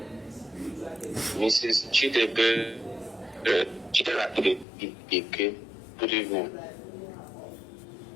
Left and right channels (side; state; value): right; drops out; at 4.7 s